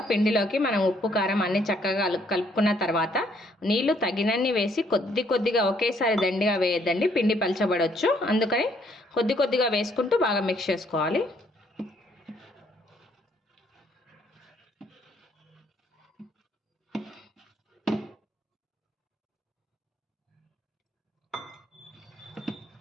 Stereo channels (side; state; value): both; normal; correlation 0.67